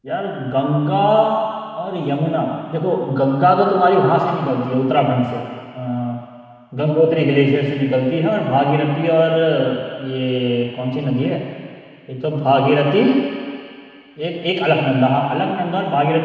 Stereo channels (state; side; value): identical; both; correlation 1.00